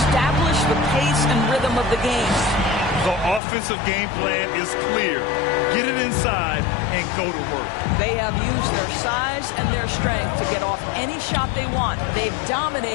the pace and rhythm of the game. The offensive game plan is clear. Get it inside and go to work. They have used their size and their strength to get off any shot they want. They've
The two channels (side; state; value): right; drops out; at 3.4 s